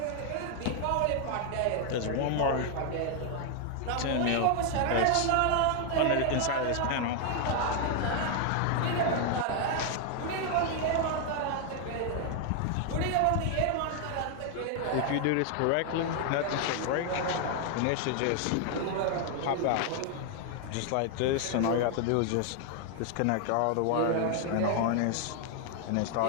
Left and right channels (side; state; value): both; different; correlation 0.00